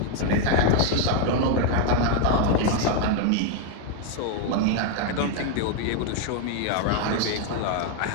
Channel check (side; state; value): both; different; correlation 0.01